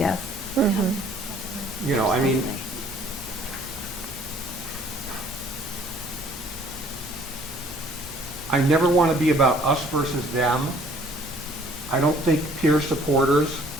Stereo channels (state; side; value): normal; both; correlation 0.57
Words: You know, I mean, I never want to be about us versus them. I don't think peer supporters